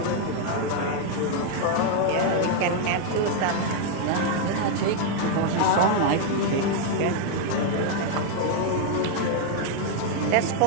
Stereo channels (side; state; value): both; different; correlation 0.00